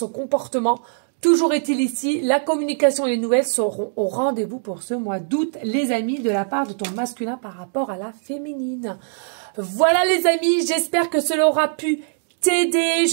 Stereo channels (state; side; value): silent; left; digital silence